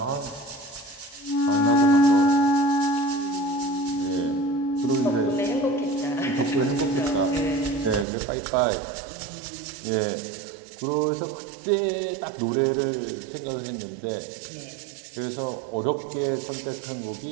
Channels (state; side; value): drops out; left; at 8.1 s